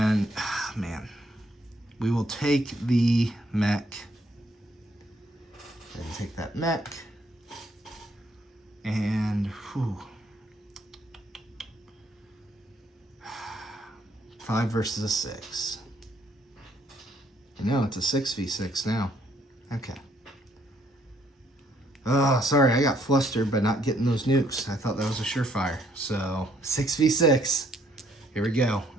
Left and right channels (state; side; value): normal; both; correlation 0.68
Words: we will take the mech. And take that mech. And, whew. 5 versus a 6. No, it's a 6v6 now. Okay. Oh, sorry, I got flustered by not getting those nukes. I thought that was a surefire. So, 6v6. Here we go.